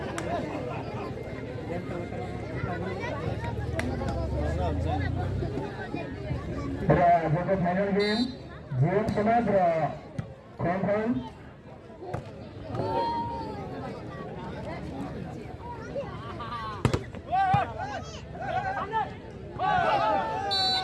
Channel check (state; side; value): identical; both; correlation 1.00